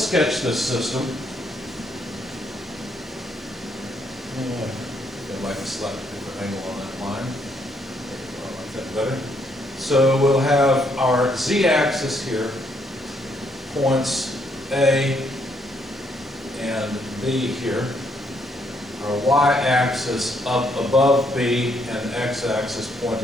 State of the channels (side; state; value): both; normal; correlation 0.72